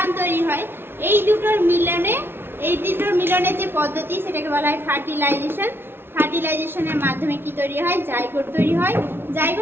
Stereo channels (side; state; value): left; late; 0.11 ms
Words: তৈরি হয়। এই দুটোর মিলনে যে পদ্ধতি সেটাকে বলা হয় ফার্টিলাইজেশন। ফার্টিলাইজেশনের মাধ্যমে কি তৈরি হয়? জাইগোট তৈরি হয়।